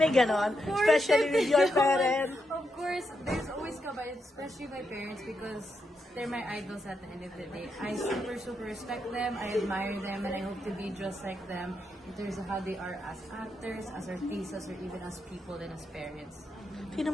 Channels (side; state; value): both; normal; correlation 0.83